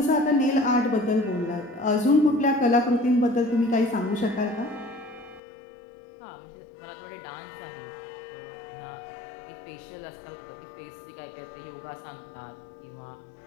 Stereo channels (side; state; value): right; drops out; at 5.4 s